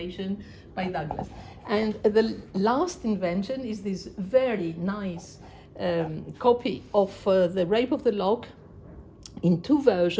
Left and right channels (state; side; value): identical; both; correlation 1.00